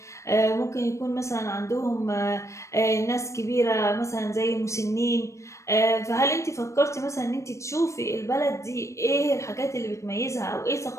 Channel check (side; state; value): right; late; 0.15 ms